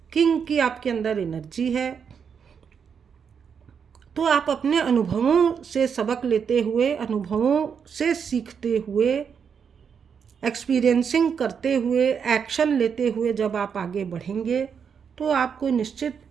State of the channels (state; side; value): quieter; left; 6.9 dB